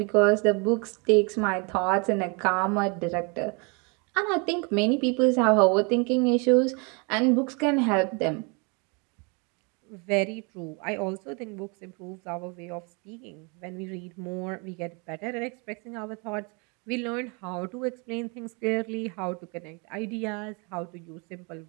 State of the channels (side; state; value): left; quieter; 32.5 dB